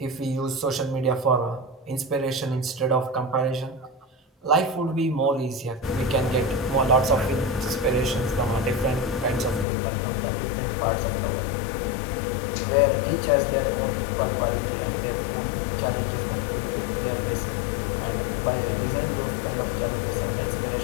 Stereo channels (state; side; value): drops out; right; at 9.7 s